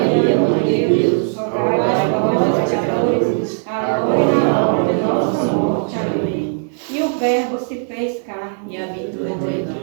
Mãe de Deus, rogai por nós, pecadores, agora e na hora de nossa morte. Amém. E o Verbo se fez carne E habitou entre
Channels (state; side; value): silent; left; digital silence